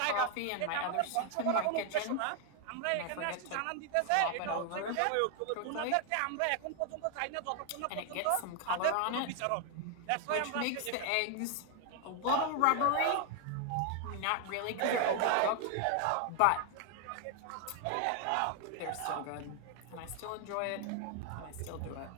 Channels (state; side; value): different; both; correlation 0.00